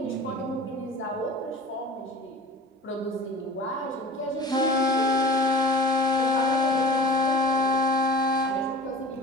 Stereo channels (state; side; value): normal; both; correlation 0.38